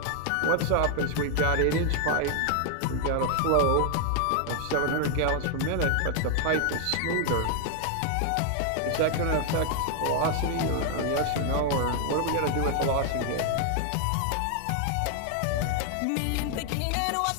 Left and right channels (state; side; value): different; both; correlation 0.00